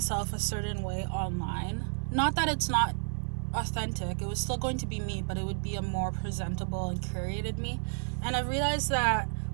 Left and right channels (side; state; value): left; silent; 57 dB below the other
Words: a certain way online. Not that it's not authentic, it was still going to be me, but it would be a more presentable and curated me. And I realized that